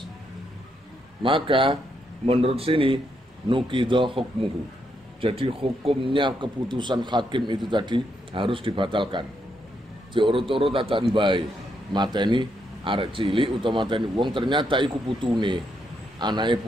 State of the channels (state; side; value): normal; both; correlation 0.78